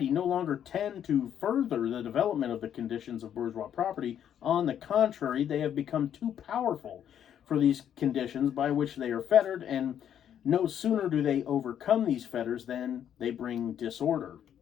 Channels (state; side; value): quieter; right; 9.6 dB